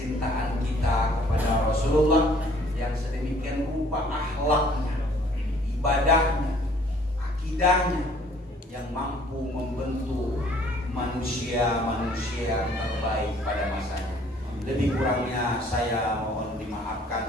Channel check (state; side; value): normal; both; correlation 0.57